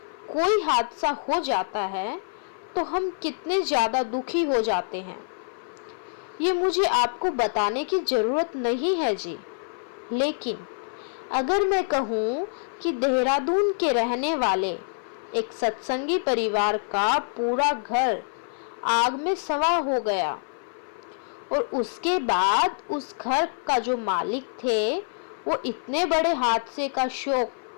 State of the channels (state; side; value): silent; right; 56 dB below the other